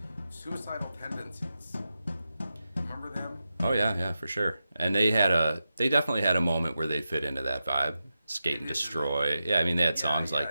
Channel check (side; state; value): both; inverted; correlation -0.90